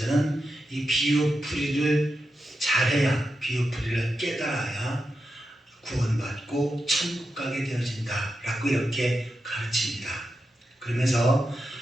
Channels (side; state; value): both; normal; correlation 0.88